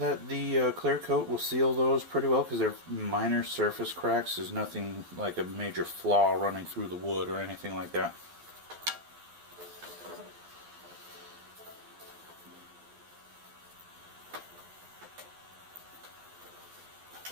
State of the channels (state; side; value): late; left; 12 ms